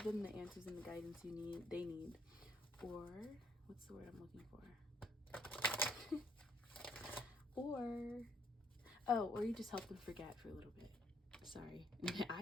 them the answers and the guidance they need, or what's the word I'm looking for? or you just help them forget for a little bit. Sorry,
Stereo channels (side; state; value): both; normal; correlation 0.68